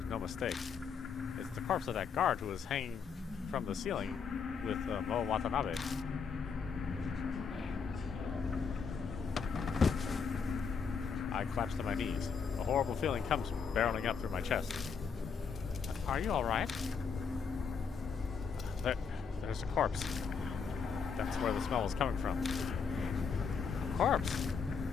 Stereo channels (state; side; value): quieter; right; 5.9 dB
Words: no mistake. It's the corpse of that guard who was hanging from the ceiling with Mo Watanabe. I collapse to my knees. A horrible feeling comes barreling up through my chest. Are you alright? There's a corpse. That's where the smell was coming from. Corpse?